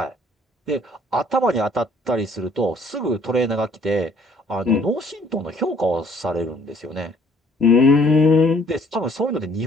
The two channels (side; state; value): both; normal; correlation 0.60